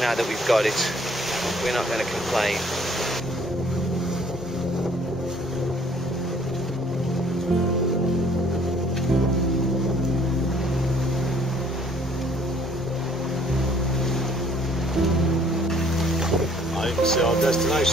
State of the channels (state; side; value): normal; both; correlation 0.59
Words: now that we've got it, we're not going to complain. You can see our